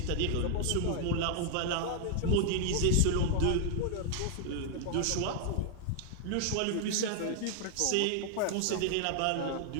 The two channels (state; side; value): different; both; correlation 0.00